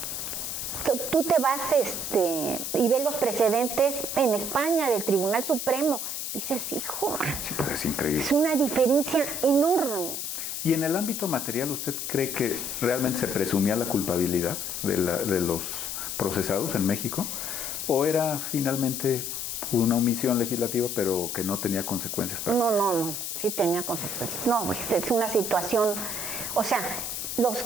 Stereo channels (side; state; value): left; noise; hiss, 4 dB below the sound